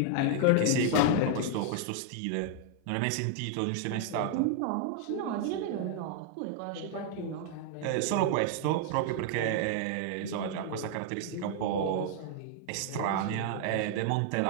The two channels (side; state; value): both; different; correlation 0.00